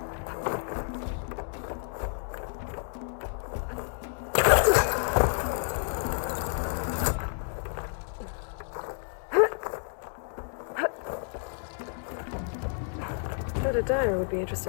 Bet a dyer would be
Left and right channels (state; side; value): silent; right; 58 dB below the other